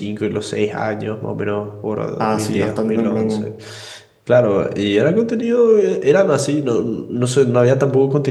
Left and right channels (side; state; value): both; identical; correlation 1.00